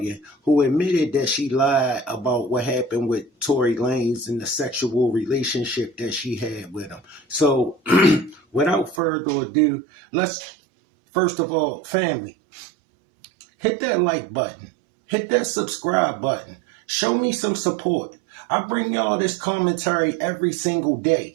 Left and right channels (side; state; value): left; drops out; at 9.0 s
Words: who admitted that she lied about what happened with Torey Lanz and the sexual relationship that she had with him. So, without further ado, let's, first of all, family, hit that like button, hit that subscribe button. Show me some support. I bring y'all this commentary every single